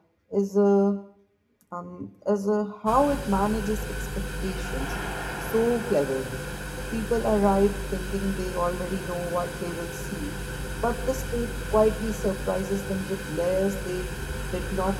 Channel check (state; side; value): identical; both; correlation 1.00